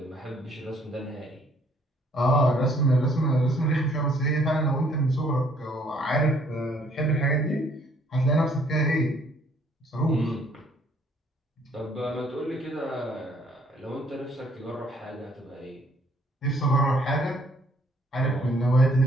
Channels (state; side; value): normal; both; correlation 0.63